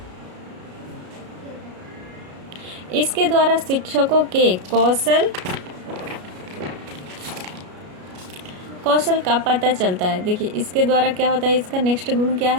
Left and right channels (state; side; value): late; left; 33 ms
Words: इसके द्वारा शिक्षकों के कौशल का पता चलता है। देखिए, इसके द्वारा क्या होता है, इसका नेक्स्ट गुण क्या